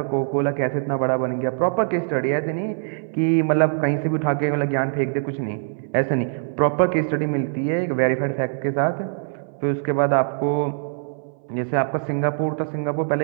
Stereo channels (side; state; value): left; silent; 63 dB below the other